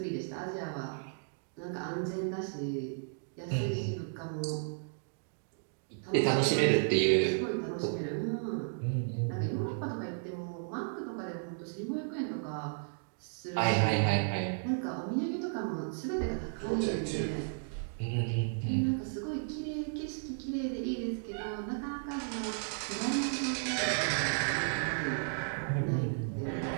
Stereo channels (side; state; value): left; silent; digital silence